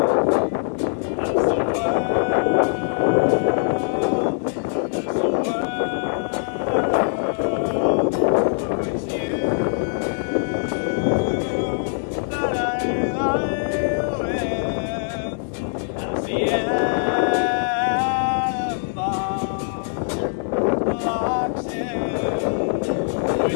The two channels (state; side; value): silent; right; 64 dB below the other